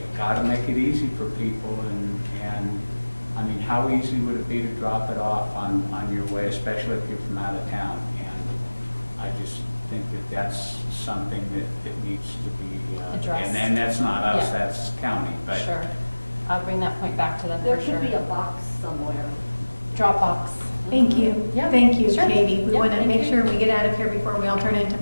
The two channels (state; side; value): inverted; both; correlation -1.00